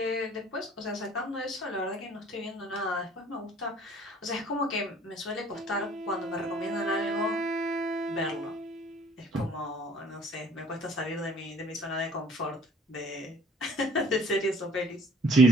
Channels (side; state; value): both; normal; correlation 0.54